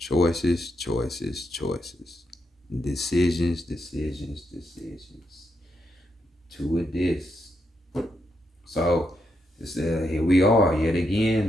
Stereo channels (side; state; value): both; normal; correlation 0.81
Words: choices, choices. Decisions, decisions, decisions. two of this. So it's, here we are yet